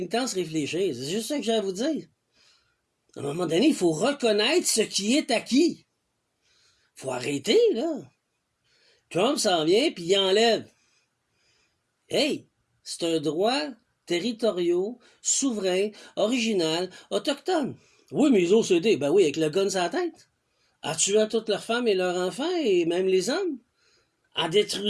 réfléchir. C'est juste ça que j'ai à vous dire. À un moment donné, il faut reconnaître ce qui est acquis. Faut arrêter, là. Trump s'en vient, puis il enlève. Hey, c'est un droit territorial, souverain, original, autochtone. Oui, mais les OCD, ben oui, avec le gun sur la tête. En tuant toutes leurs femmes et leurs enfants, et même les hommes. En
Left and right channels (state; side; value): identical; both; correlation 1.00